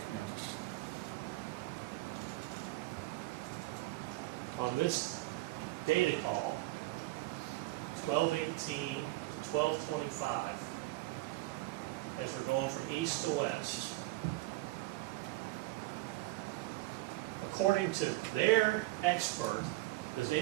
Yeah. On this data call, 1218 to 1225, as we're going from east to west, according to their expert, does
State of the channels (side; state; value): left; quieter; 19.5 dB